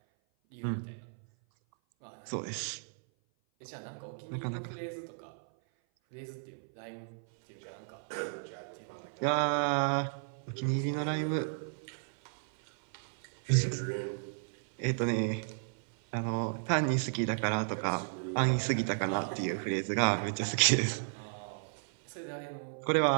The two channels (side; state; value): left; silent; 55 dB below the other